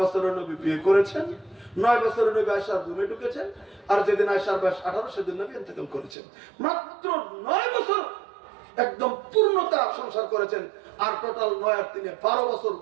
বছরের নবী বিয়ে করেছেন, 9 বছরের নবী আয়েশার রুমে ঢুকেছেন, আর যেদিন আয়েশার বয়স 18 সেদিন নবী ইন্তেকাল করেছেন। মাত্র 9 বছর একদম পূর্ণতা সংসার করেছেন, আর টোটাল 9 আর 3 12 বছর,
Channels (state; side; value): drops out; left; at 6.2 s